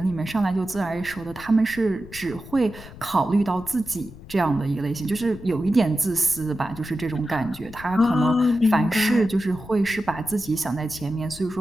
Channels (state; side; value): noise; left; rumble, 17 dB below the sound